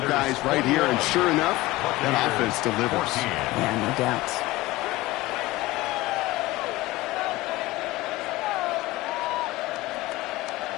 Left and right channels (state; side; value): quieter; right; 18.8 dB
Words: right here. And sure enough, that offense delivers. Yeah, no doubt.